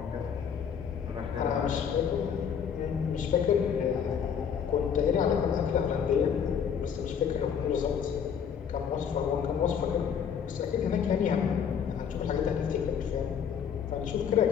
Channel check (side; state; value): right; quieter; 7.6 dB